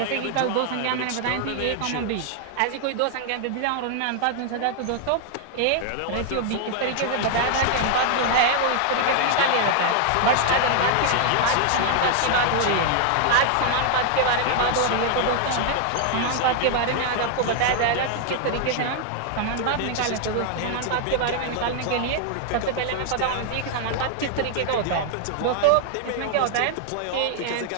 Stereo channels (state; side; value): different; both; correlation 0.00